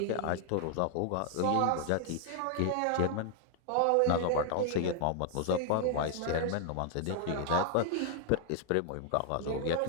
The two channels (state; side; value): different; both; correlation 0.00